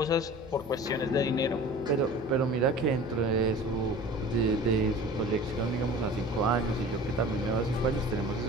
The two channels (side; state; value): both; normal; correlation 0.41